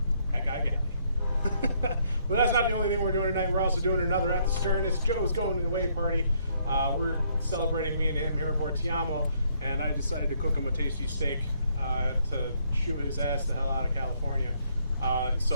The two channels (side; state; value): both; inverted; correlation -0.69